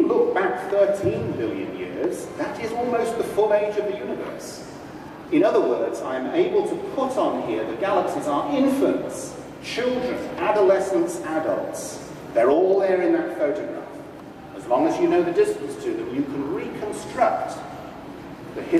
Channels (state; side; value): identical; both; correlation 1.00